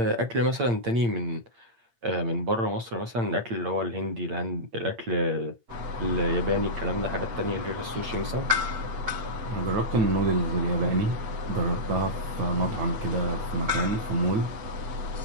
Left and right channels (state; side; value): late; left; 8.7 ms